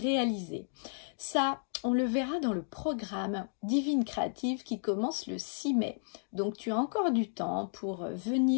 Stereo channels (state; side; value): silent; right; digital silence